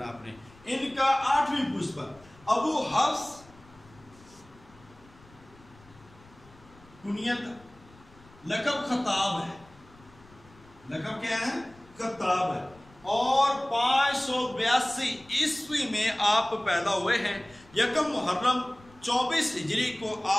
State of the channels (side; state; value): left; noise; rumble, 25 dB below the sound